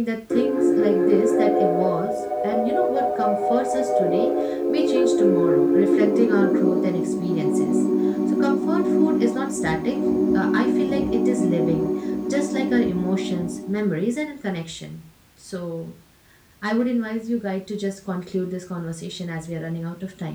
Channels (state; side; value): identical; both; correlation 1.00